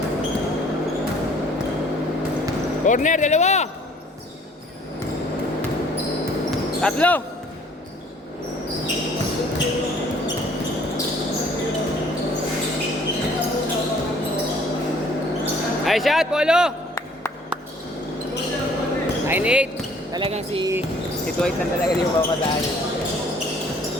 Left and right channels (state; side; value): normal; both; correlation 0.57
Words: Corner, 2! 3! Nice shot, Polo! 9-8. Talagang si Si Dwight lang talaga yung papadaan.